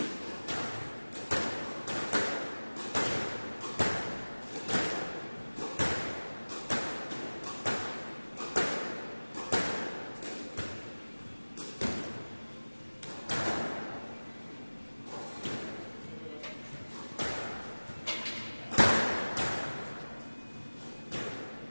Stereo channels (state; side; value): inverted; both; correlation -1.00